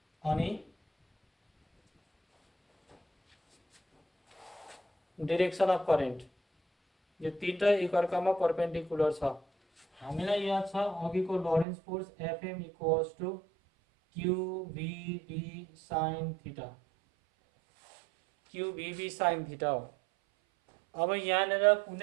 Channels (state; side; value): drops out; left; at 11.7 s